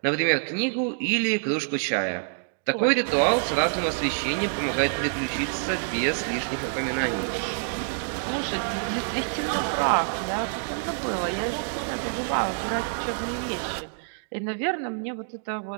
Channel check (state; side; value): silent; left; digital silence